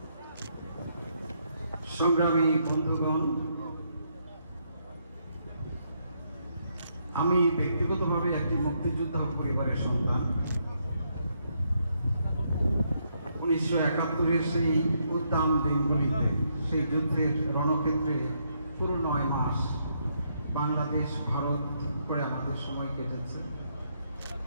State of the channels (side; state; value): both; inverted; correlation -0.76